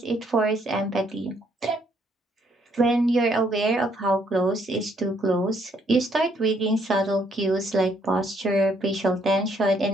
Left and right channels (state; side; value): normal; both; correlation 0.69